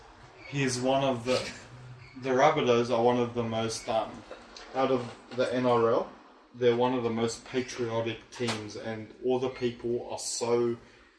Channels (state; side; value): identical; both; correlation 1.00